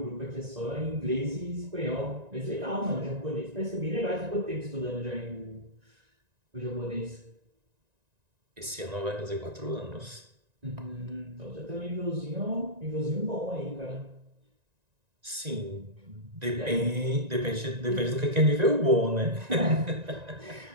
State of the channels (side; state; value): left; late; 1.9 ms